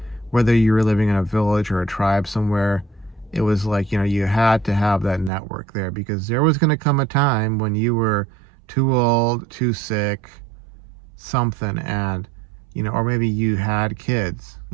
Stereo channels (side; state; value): left; drops out; at 5.3 s